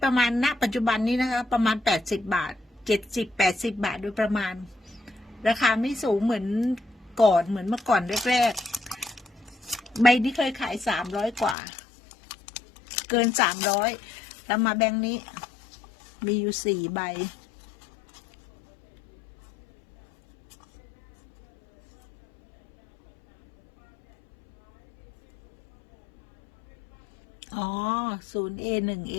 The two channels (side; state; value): right; drops out; at 11.6 s